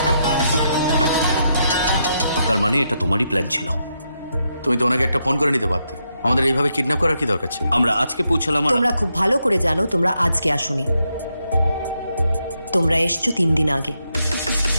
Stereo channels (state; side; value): inverted; both; correlation -0.81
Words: তার মানে এটা তোমারই প্ল্যান ছিল? তুমি তো ওনাকে একটা ফোন করে নিতে পারতে। আমাদের এইভাবে কিডন্যাপ করার কি দরকার ছিল? আমরা আজকে পৌঁছালাম। তোমরা খুব ভালো করে জানো তোমরা আজকে আসোনি, তোমরা এসছো 3 দিন আগে।